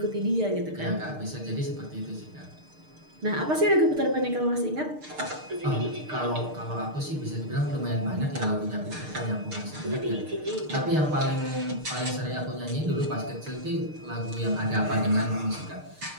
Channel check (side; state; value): left; late; 6.6 ms